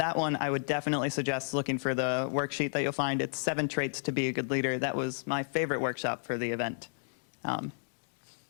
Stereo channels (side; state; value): right; silent; digital silence